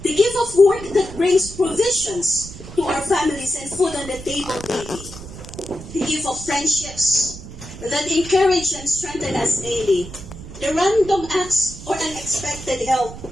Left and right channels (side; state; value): right; noise; rumble, 13 dB below the sound